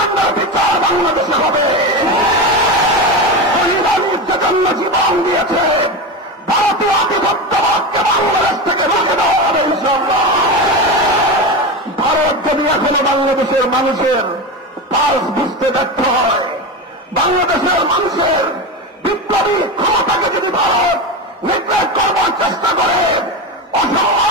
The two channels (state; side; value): normal; both; correlation 0.20